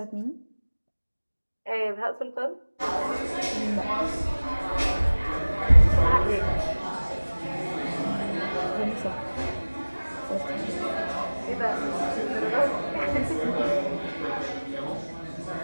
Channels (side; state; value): both; inverted; correlation -1.00